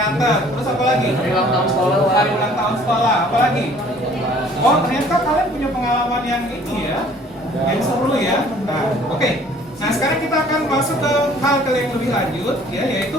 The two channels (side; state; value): both; normal; correlation 0.55